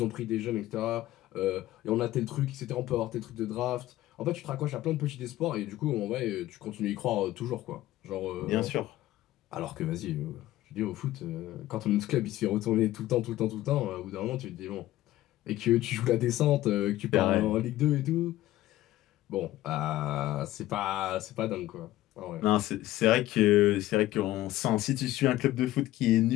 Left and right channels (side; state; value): right; quieter; 15.4 dB